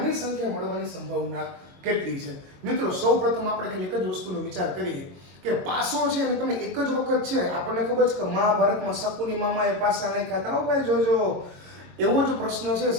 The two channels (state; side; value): late; left; 22 ms